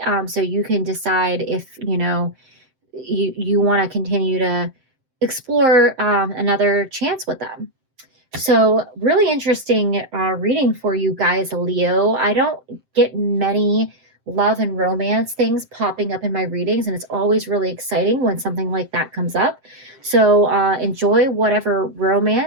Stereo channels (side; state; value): left; late; 7.7 ms